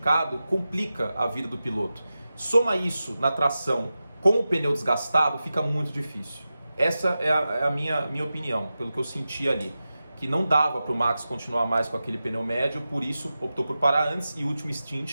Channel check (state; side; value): inverted; both; correlation -0.93